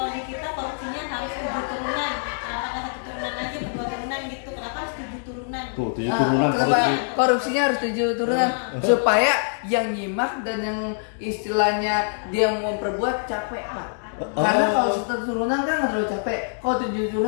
di kita korupsinya harus 7 turunan? Apakah 1 turunan aja, 2 turunan gitu? Kenapa harus 7 turunan? Tuh, 7 turunan korupsinya harus 7 turunan supaya yang nyimak dan yang istilahnya dia mau memperbuat capek, Pak. Karena kalau 1 turunan kan nggak terlalu capek. Kalau 7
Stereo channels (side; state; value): right; silent; digital silence